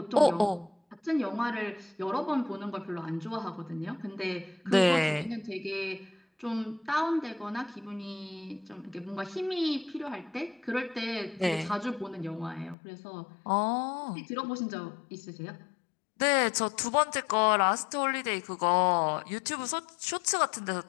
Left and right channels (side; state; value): right; drops out; at 12.8 s